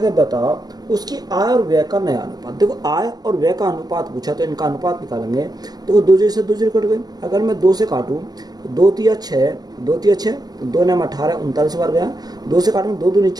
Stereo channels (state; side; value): late; left; 0.19 ms